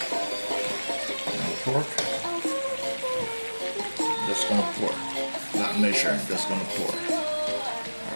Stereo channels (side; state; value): both; inverted; correlation -1.00